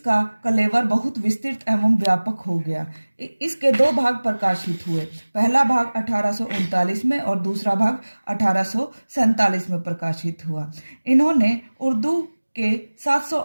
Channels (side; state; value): both; inverted; correlation -1.00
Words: कलेवर बहुत विस्तृत एवं व्यापक हो गया। इसके दो भाग प्रकाशित हुए। पहला भाग 1839 में और दूसरा भाग 1847 में प्रकाशित हुआ। इन्होंने उर्दू के